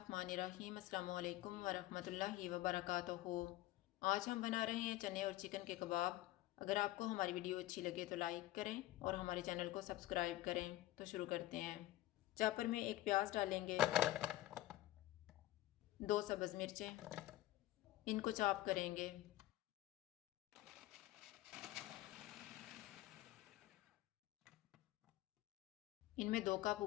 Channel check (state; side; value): quieter; right; 15.8 dB